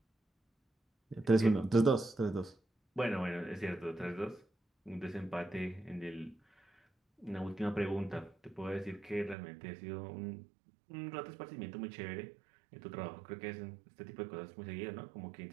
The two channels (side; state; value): left; drops out; at 9.3 s